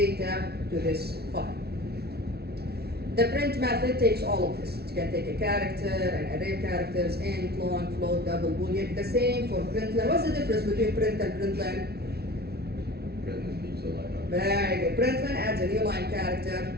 to this file. The print method takes all of this. It can take a character, an array of characters, int, long, float, double, boolean. The same for println. What's the difference between print and println? Print leaves a line up. Very good. Println adds a new line character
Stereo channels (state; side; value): late; left; 0.46 ms